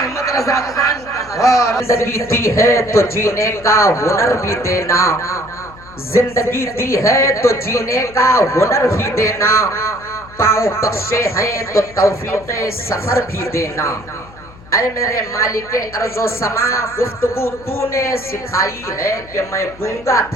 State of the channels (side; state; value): left; noise; hum, 21 dB below the sound